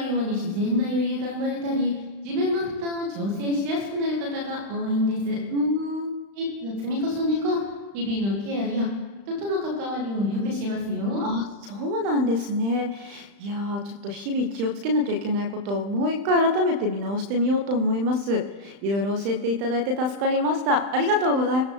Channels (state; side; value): late; left; 35 ms